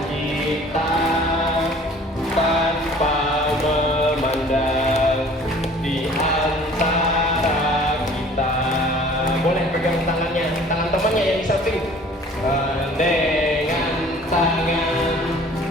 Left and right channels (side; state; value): both; normal; correlation 0.50